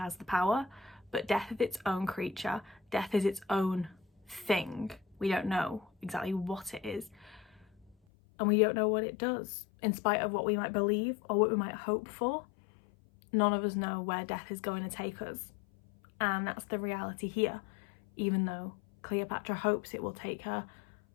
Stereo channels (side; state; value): right; drops out; at 8.0 s